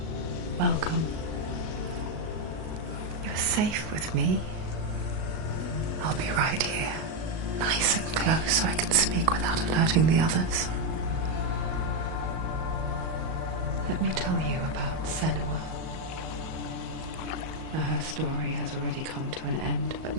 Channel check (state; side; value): late; left; 37 ms